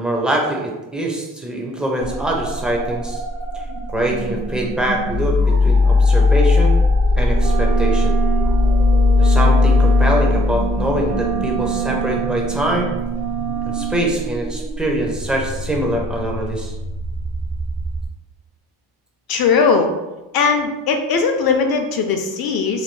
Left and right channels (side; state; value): both; normal; correlation 0.62